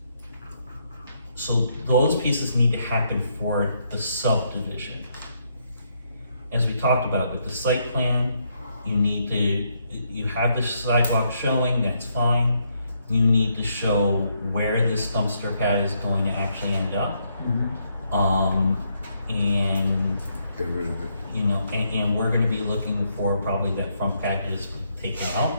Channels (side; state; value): both; inverted; correlation -0.75